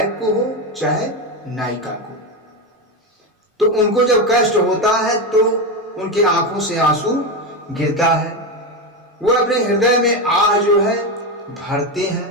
को हो चाहे नायिका को, तो उनको जब कष्ट होता है तो उनकी आंखों से आंसू गिरता है, वो अपने हृदय में आह जो है भरते हैं।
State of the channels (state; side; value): normal; both; correlation 0.14